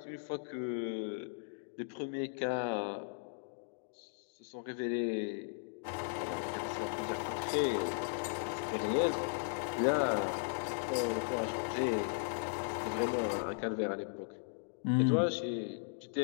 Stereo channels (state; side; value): silent; right; digital silence